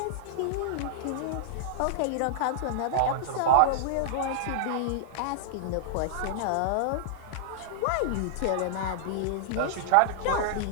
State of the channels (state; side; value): different; both; correlation -0.01